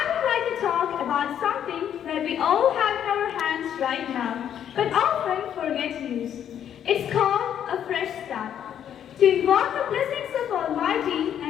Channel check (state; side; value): quieter; right; 9.6 dB